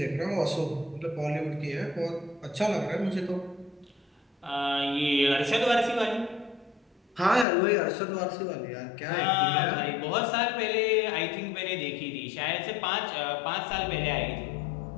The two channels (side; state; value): right; drops out; at 7.5 s